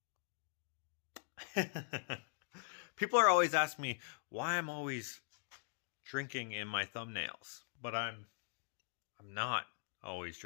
People are always asking me why I'm always drinking in my thumbnails, but I'm not always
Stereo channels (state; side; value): silent; right; digital silence